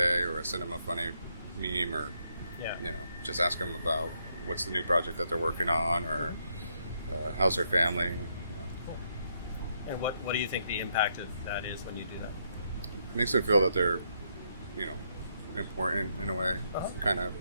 Or I send them a funny meme, or just ask them about what's the new project that they're working on, or how's their family. Cool. And what do you think the impact of that is when you do that? It makes them feel that they're, important in a way, kind of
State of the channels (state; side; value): inverted; both; correlation -0.76